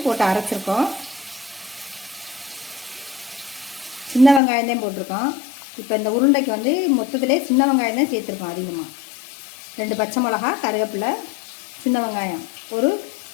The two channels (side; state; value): right; drops out; at 4.4 s